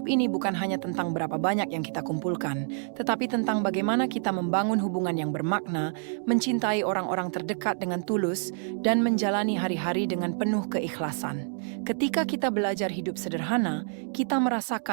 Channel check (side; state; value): left; silent; digital silence